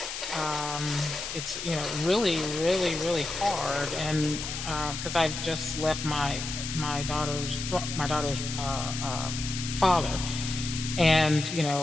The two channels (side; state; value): left; noise; hiss, 6 dB below the sound